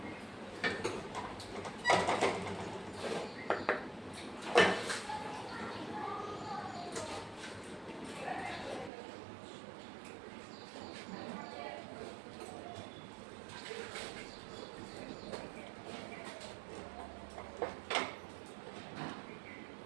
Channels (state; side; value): drops out; left; at 8.9 s